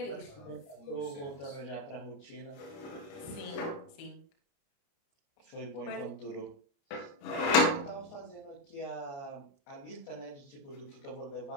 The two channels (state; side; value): late; right; 29 ms